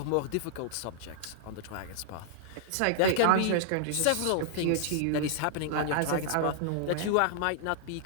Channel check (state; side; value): different; both; correlation -0.01